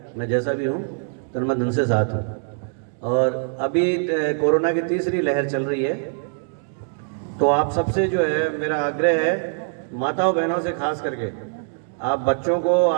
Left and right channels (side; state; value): left; silent; digital silence